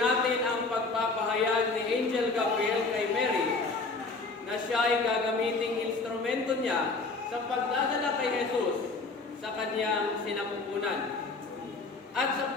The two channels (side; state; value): right; quieter; 3.8 dB